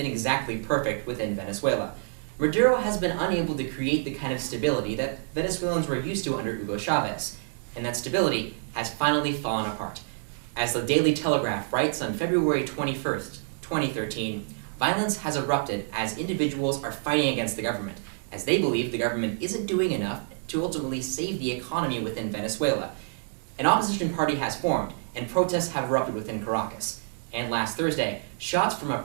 exactly perfect within Venezuela. Maduro has been unable to create the kind of stability that Venezuelans were used to under Hugo Chavez, and that stability has finally fallen apart. As the Daily Telegraph writes on February 21st, 2013, violence has erupted as individuals are fighting against the government, as they believe the government isn't doing enough to ultimately save the economy within Venezuela. An opposition party has formed, and protests have erupted within Caracas. And last Thursday, shots from a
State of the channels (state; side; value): silent; left; digital silence